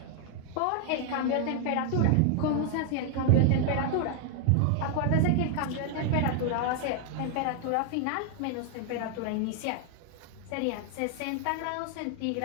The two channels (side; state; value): both; different; correlation 0.00